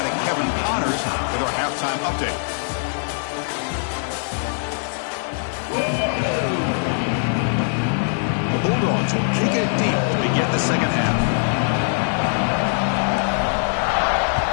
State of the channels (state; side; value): silent; right; 64 dB below the other